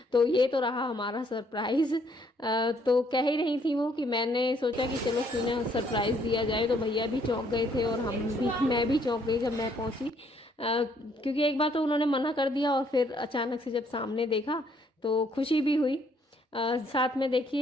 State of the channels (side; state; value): both; normal; correlation 0.67